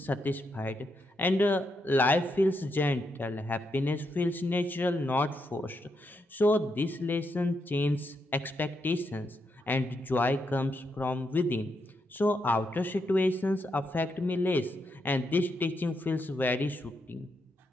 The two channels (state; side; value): normal; both; correlation 0.81